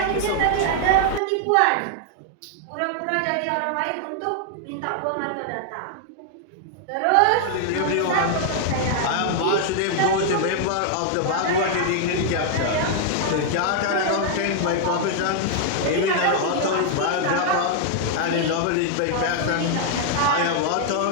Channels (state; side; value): different; both; correlation 0.00